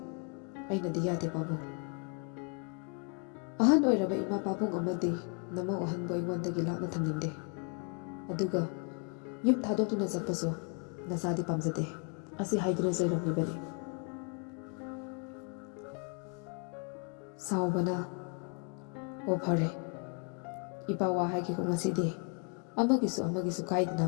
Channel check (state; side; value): quieter; right; 37.6 dB